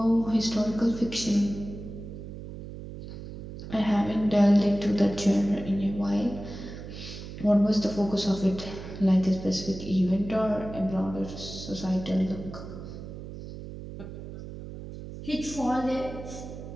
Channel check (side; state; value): right; noise; hum, 11 dB below the sound